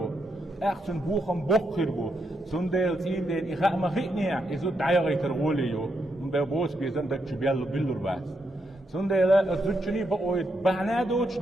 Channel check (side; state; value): both; normal; correlation 0.81